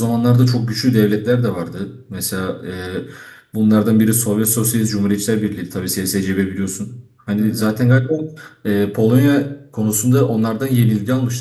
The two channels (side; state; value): both; identical; correlation 1.00